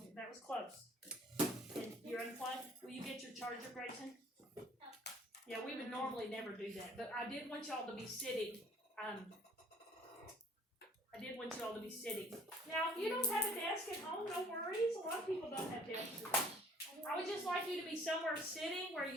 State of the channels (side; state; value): both; normal; correlation 0.55